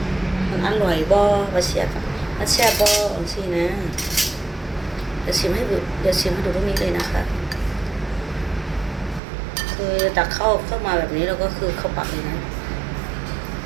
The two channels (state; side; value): drops out; left; at 9.2 s